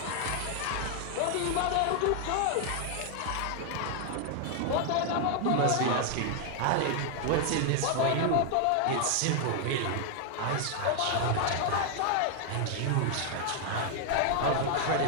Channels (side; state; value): both; different; correlation 0.00